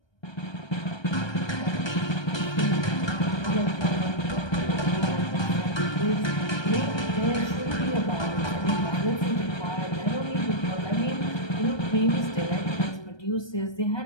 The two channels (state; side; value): late; right; 1.3 ms